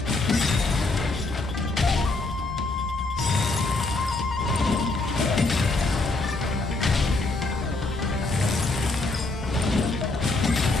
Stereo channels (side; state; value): right; quieter; 3.2 dB